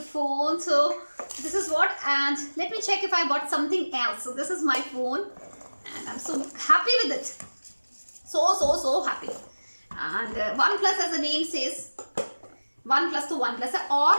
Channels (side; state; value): both; inverted; correlation -1.00